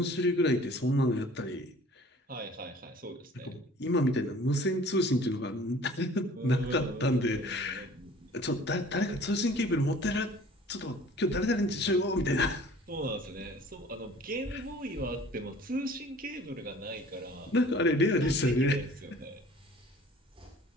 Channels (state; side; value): normal; both; correlation 0.49